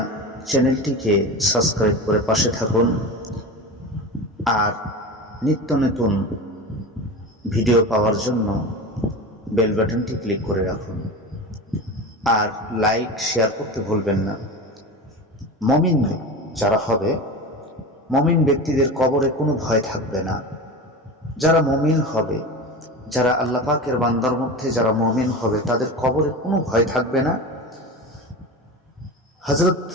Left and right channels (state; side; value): normal; both; correlation 0.28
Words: চ্যানেলটিকে সাবস্ক্রাইব করে পাশে থাকুন আর নিত্য নতুন ভিডিও পাওয়ার জন্য বেল বাটনটি ক্লিক করে রাখুন আর লাইক শেয়ার করতে ভুলবেন না। মুমিন যারা হবে, মুমিন ব্যক্তিদের কবরে কোনো ভয় থাকবে না। যারা মুমিন হবে, যারা আল্লাহ পাকের বান্দার মধ্যে যারা মুমিন হবে, তাদের কবরে কোনো ভয় থাকবে না। হযরত